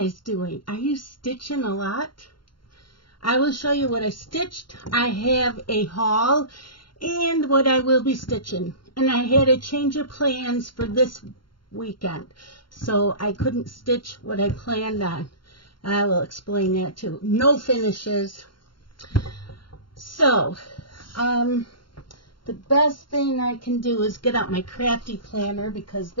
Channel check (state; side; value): late; right; 0.72 ms